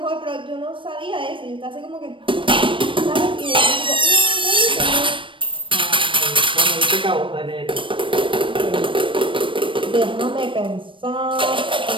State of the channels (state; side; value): late; left; 0.25 ms